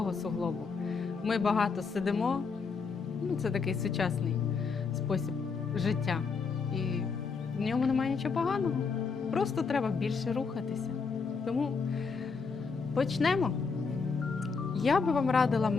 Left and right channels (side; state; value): right; quieter; 5.0 dB